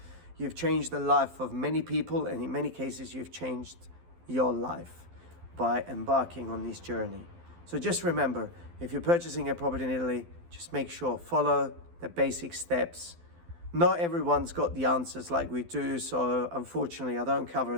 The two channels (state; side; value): late; left; 12 ms